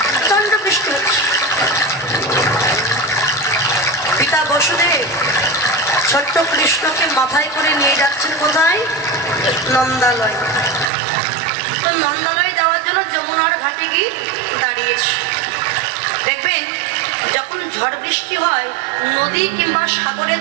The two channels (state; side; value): drops out; left; at 10.9 s